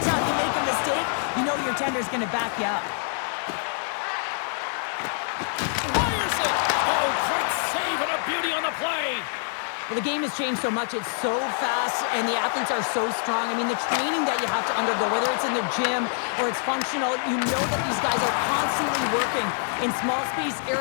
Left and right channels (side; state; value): right; silent; 61 dB below the other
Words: time you make a mistake, you know your tender's going to back you up. Fires it! Oh, great save and a beauty on the play. Well, the game has changed so much. It's so fast, and the athletes are so strong. I mean, the training that you have to undergo, whether it's in the gym or it's functional, you know that these guys are constantly working in small space